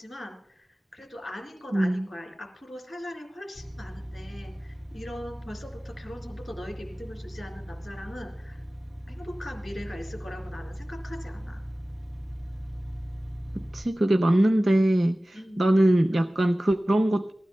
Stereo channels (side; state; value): both; normal; correlation 0.97